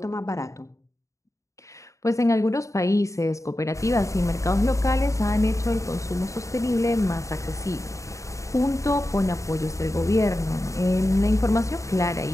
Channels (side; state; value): right; late; 0.15 ms